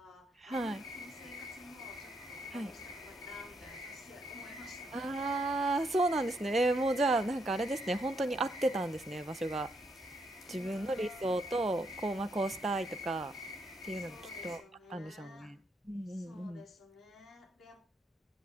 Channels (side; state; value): both; normal; correlation 0.76